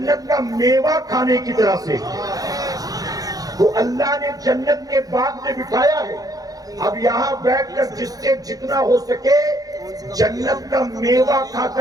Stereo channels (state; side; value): late; left; 0.18 ms